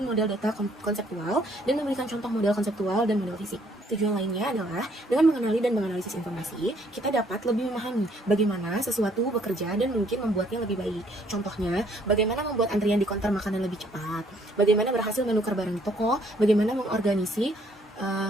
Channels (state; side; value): normal; both; correlation 0.65